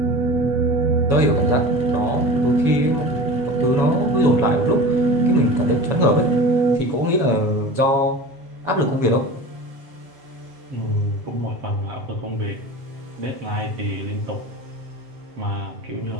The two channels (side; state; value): left; late; 7.2 ms